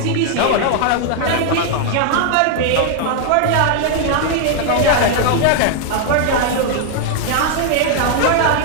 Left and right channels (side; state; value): both; different; correlation 0.00